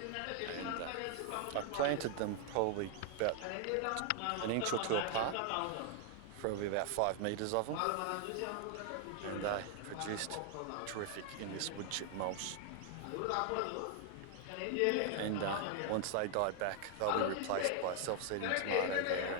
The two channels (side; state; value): both; different; correlation 0.00